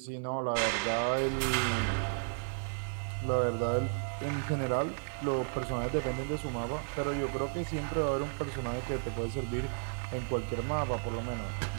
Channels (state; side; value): silent; left; digital silence